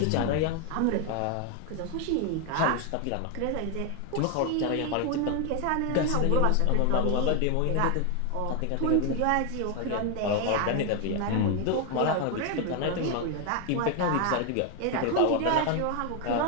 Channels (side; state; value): both; different; correlation 0.01